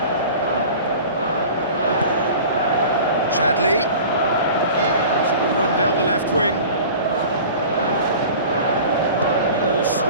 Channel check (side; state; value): both; inverted; correlation -0.41